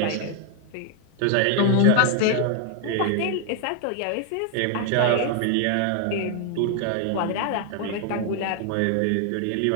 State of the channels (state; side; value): different; both; correlation 0.00